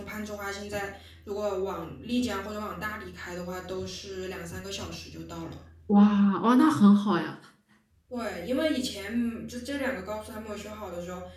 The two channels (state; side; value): identical; both; correlation 1.00